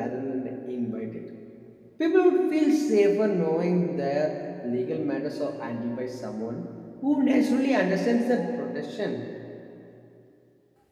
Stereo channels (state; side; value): identical; both; correlation 1.00